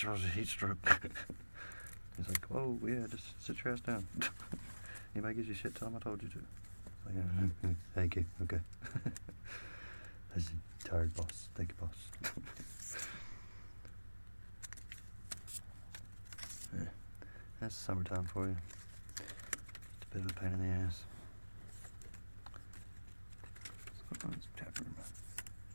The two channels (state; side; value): inverted; both; correlation -1.00